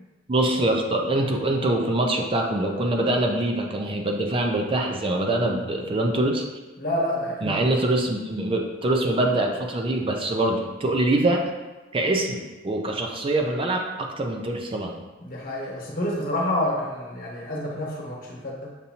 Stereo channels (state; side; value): normal; both; correlation 0.42